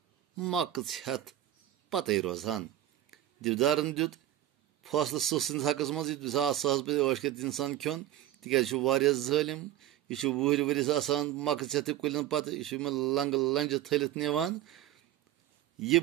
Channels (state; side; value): quieter; left; 13.1 dB